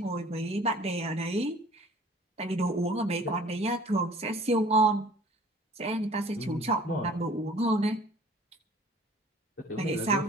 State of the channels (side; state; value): both; normal; correlation 0.50